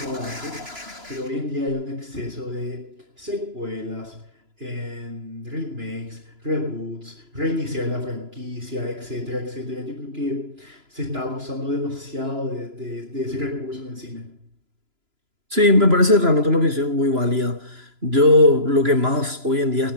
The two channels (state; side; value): late; left; 3.0 ms